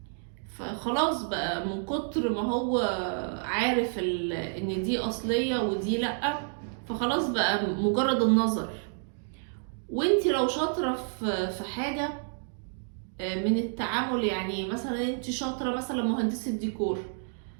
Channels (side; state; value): left; silent; digital silence